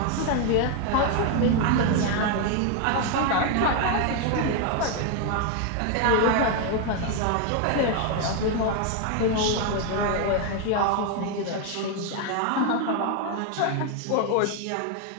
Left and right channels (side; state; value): both; different; correlation 0.01